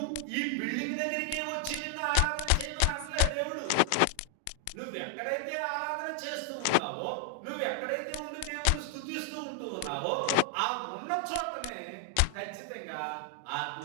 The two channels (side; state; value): both; different; correlation 0.00